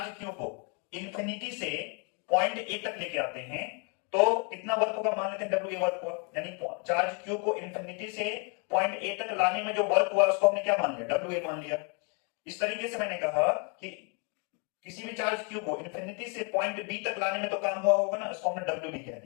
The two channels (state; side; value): quieter; right; 35.5 dB